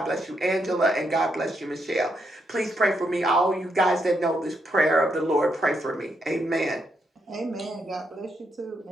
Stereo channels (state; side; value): normal; both; correlation 0.79